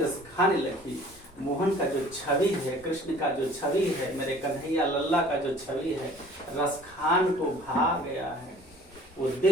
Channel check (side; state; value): both; normal; correlation 0.51